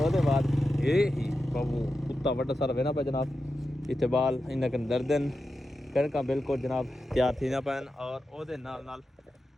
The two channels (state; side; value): normal; both; correlation 0.90